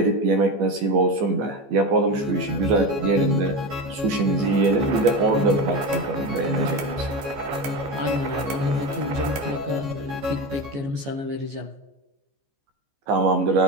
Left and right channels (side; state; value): left; late; 14 ms